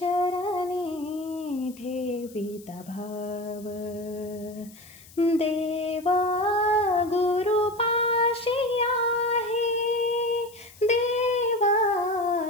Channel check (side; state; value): left; noise; hiss, 22 dB below the sound